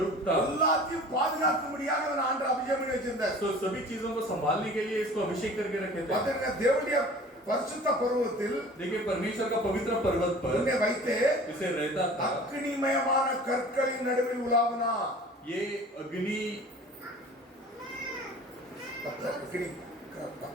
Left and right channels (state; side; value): normal; both; correlation 0.44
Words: था। எல்லாத்தையும் பாதுகாக்கும்படியாக அவன் ஆண்டவர் அபிஷேகம் பண்ணி வச்சிருந்தார். வச்சிருந்தார். तो सभी चीजों को संभालने के लिए इसको अभिषेक करके रखे थे. பாத்தீங்கன்னா தேவனுடைய பரிசுத்த பர்வதத்தில் देखिए परमेश्वर का पवित्र पर्वत पर உன்னை வைத்து इसे रहता था. அக்னிமயமான கற்களின் நடுவில் உலாவினா. ये अग्नि பத்தர்